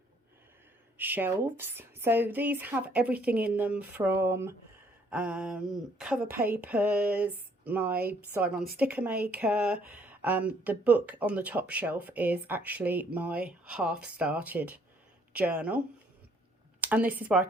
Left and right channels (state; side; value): normal; both; correlation 0.64